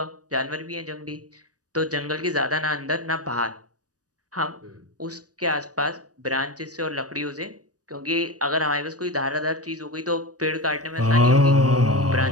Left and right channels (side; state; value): left; late; 0.67 ms